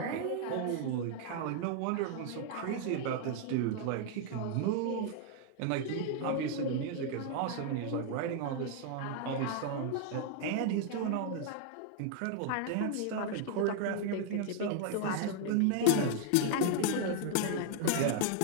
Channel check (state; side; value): different; both; correlation 0.00